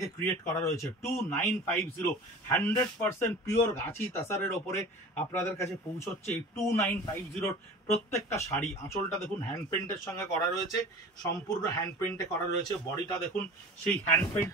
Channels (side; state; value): both; normal; correlation 0.39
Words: ক্রিয়েট করা রয়েছে। 2950 100% পিওর গাছি তাসারের ওপরে আপনাদের কাছে পৌঁছচ্ছে এই 2950-র প্রত্যেকটা শাড়ি। আঁচলটা দেখুন হ্যান্ড পেন্টের সঙ্গে করা রয়েছে, সম্পূর্ণ হ্যান্ড পেন্টে করা রয়েছে। বডিটা দেখুন সেই হ্যান্ড